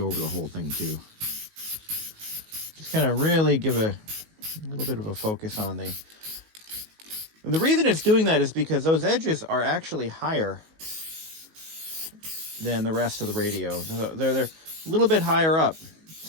over the whole thing too. Just kind of really give a little bit of a focus on the... And the reason it's doing that is because those edges are actually higher than the rest of the radio. They're a little bit higher up.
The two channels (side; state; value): left; late; 19 ms